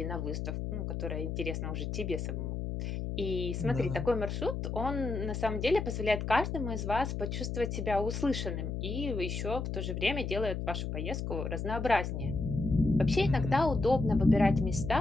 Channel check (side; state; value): left; noise; hum, 3 dB below the sound